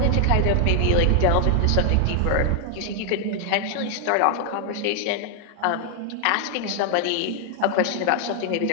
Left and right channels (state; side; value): different; both; correlation 0.00